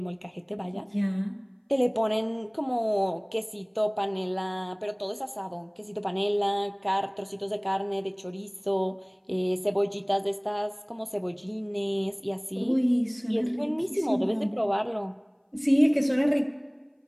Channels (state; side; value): identical; both; correlation 1.00